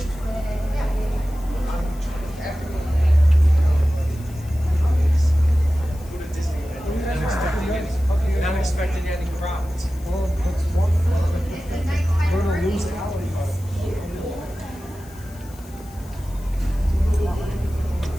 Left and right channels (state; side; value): noise; left; hiss, 23 dB below the sound